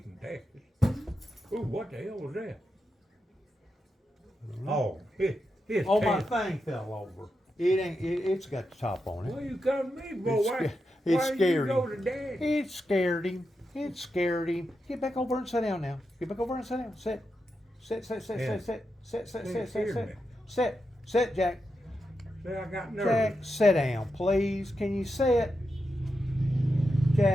from Texas. Ooh, what the hell was that? Oh, his Oh, my Texas. thing fell over. It ain't. It's got the top on it. Well, you come to me, boy. It Why scared did you go him. to Daddy? It scared him. It scared him. Get back over and sit down now. Get back over and sit down. Sit. Sit, Yeah. Jack. See, I got Jack, nervous. sit down, please. Can you sit?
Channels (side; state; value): both; normal; correlation 0.87